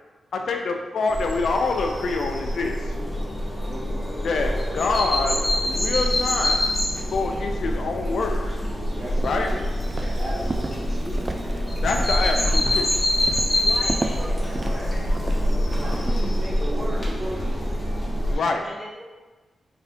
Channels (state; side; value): normal; both; correlation 0.90